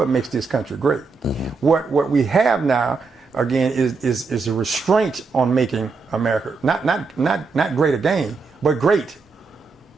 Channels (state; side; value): quieter; left; 4.5 dB